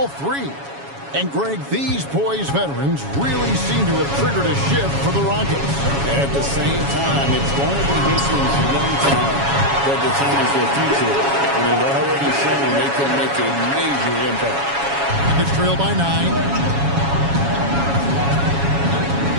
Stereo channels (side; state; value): left; late; 7.2 ms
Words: 3. And, Greg, these poised veterans really seem to have triggered a shift for the Rockets. At the same time, it's going to be Houston's young talent that determines their future. And they've already shown they can make a major impact. It's trailed by 9.